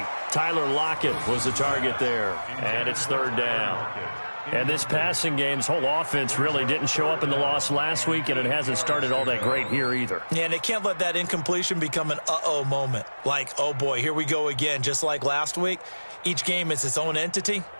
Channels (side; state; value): both; inverted; correlation -1.00